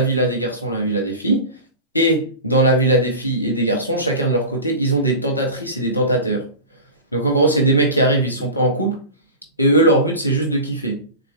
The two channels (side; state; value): both; inverted; correlation -0.31